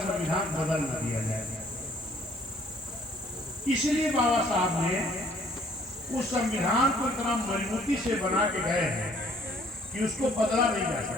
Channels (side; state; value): both; normal; correlation 0.60